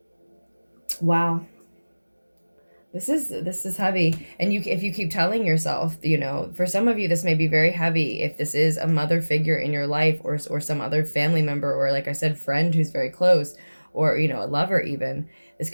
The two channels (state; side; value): inverted; both; correlation -1.00